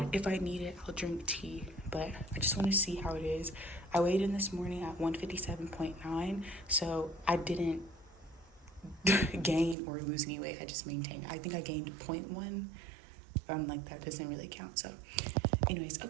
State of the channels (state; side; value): drops out; left; at 9.8 s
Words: If I need it, I'll drink tea, but I just want to see how it is. I weighed in this morning at 157.9, so I didn't gain or lose any weight. I just maintained. I think I gained 0.1. Like that doesn't really count. So anyways,